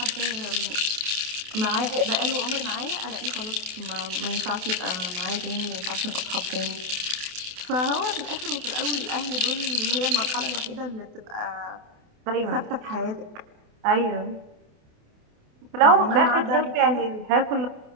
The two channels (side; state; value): left; late; 28 ms